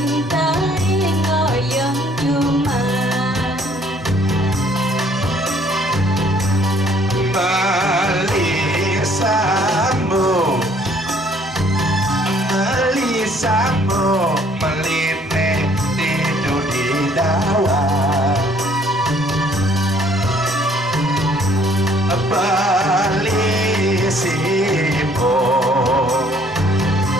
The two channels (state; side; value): normal; both; correlation 0.61